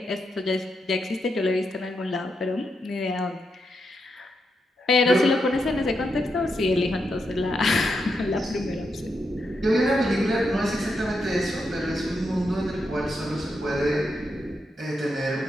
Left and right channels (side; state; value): both; normal; correlation 0.83